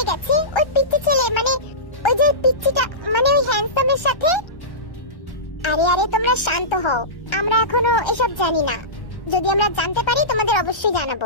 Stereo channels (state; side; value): late; right; 1.3 ms